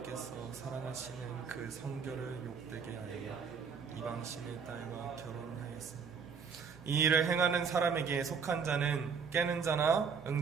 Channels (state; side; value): quieter; left; 6.1 dB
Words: 사랑하시는 그 성결을 욕되게 하여 이방신의 딸과 결혼하였습니다. 이 일을 행하는 사람에게 속한 자는 깨는 자나